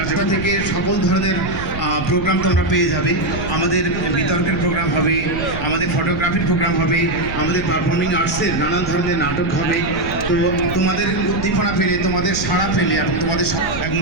থেকে সকল ধরনের প্রোগ্রাম তোমরা পেয়ে যাবে। আমাদের বিতর্কের প্রোগ্রাম হবে, আমাদের ফটোগ্রাফির প্রোগ্রাম হবে, আমাদের পারফর্মিং আর্টসের নানান ধরনের নাটক হবে। তো তোমাদের উদ্দীপনা পেলে, তোমাদের সাড়া পেলে এবং তোমাদের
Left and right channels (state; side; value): noise; right; rumble, 8 dB below the sound